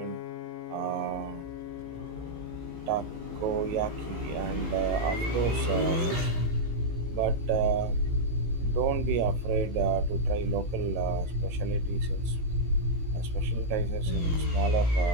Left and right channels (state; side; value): late; left; 18 ms